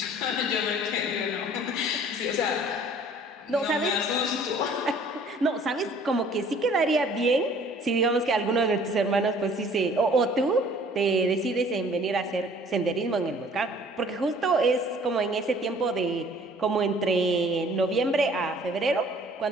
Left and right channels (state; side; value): normal; both; correlation 0.54